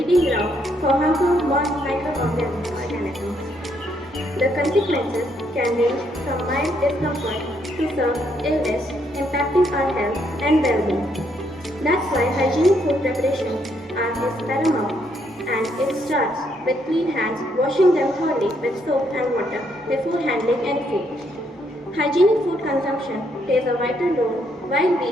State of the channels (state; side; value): normal; both; correlation 0.73